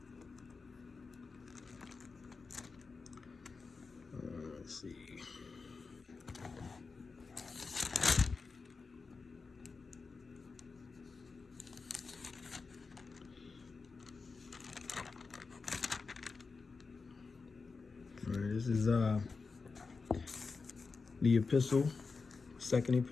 Let's see. All right, this is the epistle, second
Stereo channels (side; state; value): right; quieter; 4.5 dB